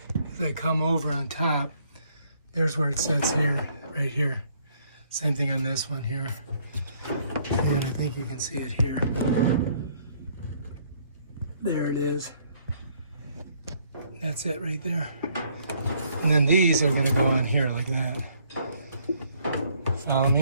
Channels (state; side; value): inverted; both; correlation -0.66